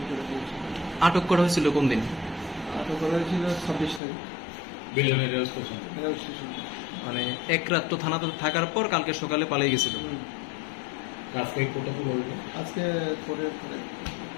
করে দিয়েছিল আটক করা হয়েছিল কোন দিন আটক করা হয়েছিল 26 তারিখ রেল স্টেশন মানে এক রাত তো থানাতে থাকার পর কালকে সকালে পালিয়ে গেছিল আজকে পরে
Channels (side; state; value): right; drops out; at 4.0 s